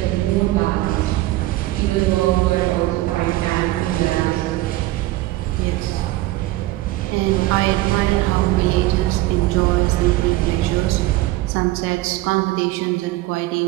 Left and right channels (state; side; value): quieter; left; 17.6 dB